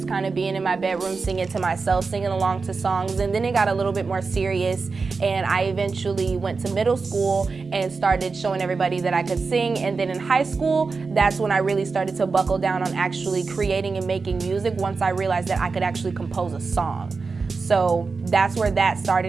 kind of being in my bedroom singing to myself, singing along to songs, and then it got a little bit more serious, and I eventually went to middle school and started showing everybody that I could sing, and then in high school, that's when I really started to buckle down on actually creating and making music once I realized that I could actually compose a song. So that's where that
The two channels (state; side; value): quieter; left; 4.5 dB